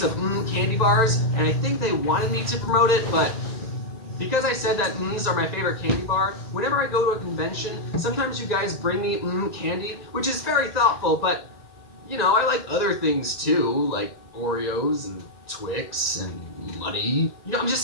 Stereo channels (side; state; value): right; late; 2.0 ms